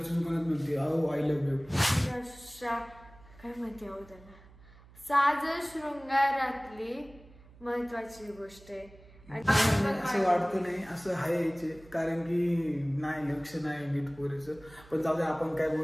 दुकानात म्हणते अहो आय लव्ह यू. काय म्हणते अहो त्याला, साज शृंगारातली महत्वाची गोष्ट आहे. असं वाटतं नाही असं आहे कारण की नाही लक्ष नाही नीट पोरीचं. पण जाऊ दे आपण काय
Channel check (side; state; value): right; noise; hum, 23 dB below the sound